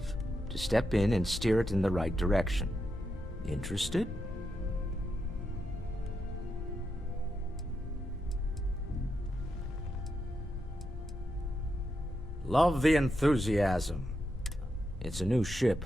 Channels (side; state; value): both; normal; correlation 0.85